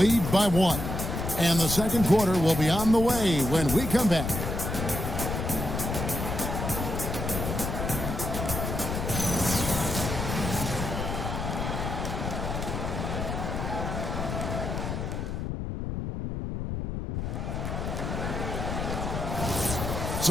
by 1. And the second quarter will be on the way when we come back.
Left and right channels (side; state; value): left; noise; rumble, 3 dB below the sound